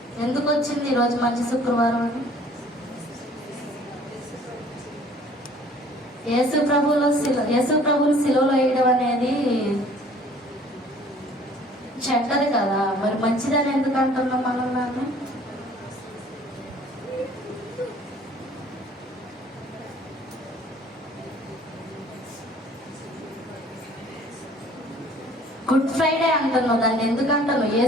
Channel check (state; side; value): normal; both; correlation 0.53